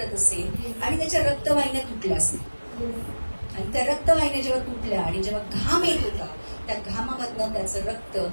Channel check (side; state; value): both; inverted; correlation -1.00